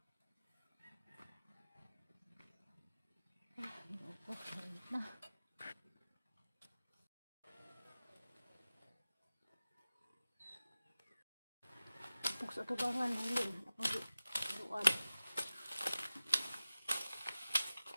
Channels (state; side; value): inverted; both; correlation -0.96